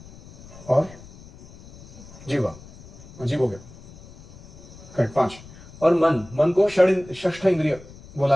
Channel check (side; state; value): left; noise; rumble, 20 dB below the sound